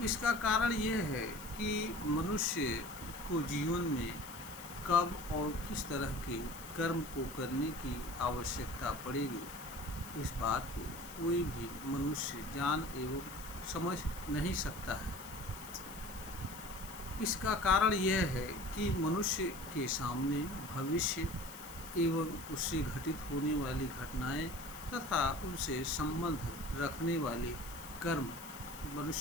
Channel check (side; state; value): left; noise; hiss, 15 dB below the sound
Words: इसका कारण यह है कि मनुष्य को जीवन में कब और किस तरह के कर्म को करने की आवश्यकता पड़ेगी, इस बात को कोई भी मनुष्य जान एवं समझ नहीं सकता है। इसका कारण यह है कि मनुष्य के सामने भविष्य एवं उससे घटित होने वाली घटनाएं तथा उनसे संबंध रखने वाले कर्म